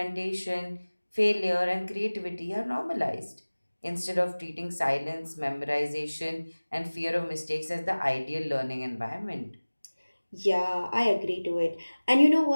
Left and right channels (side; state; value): both; inverted; correlation -1.00